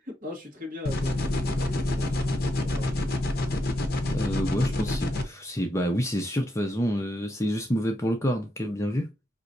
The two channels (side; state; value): both; normal; correlation 0.82